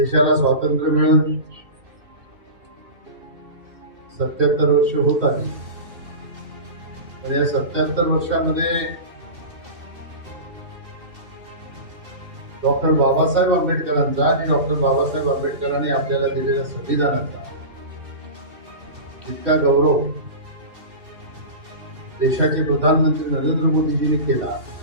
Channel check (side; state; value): left; late; 2.7 ms